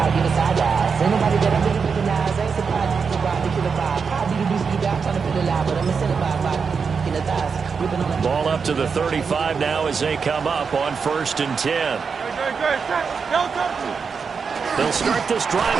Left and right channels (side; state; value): left; quieter; 5.6 dB